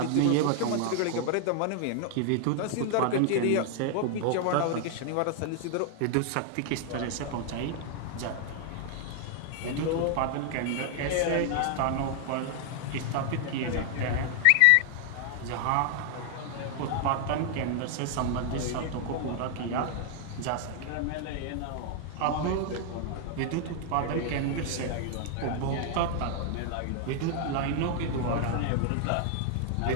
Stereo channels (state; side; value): different; both; correlation 0.00